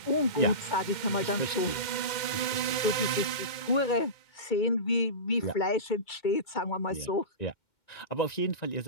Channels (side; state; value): right; late; 2.1 ms